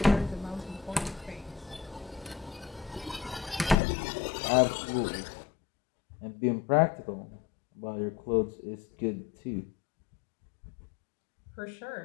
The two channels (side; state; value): right; drops out; at 3.8 s